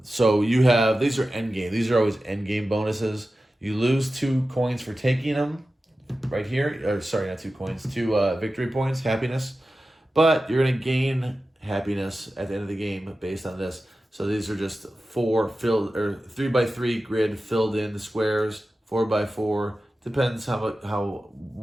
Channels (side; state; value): both; normal; correlation 0.94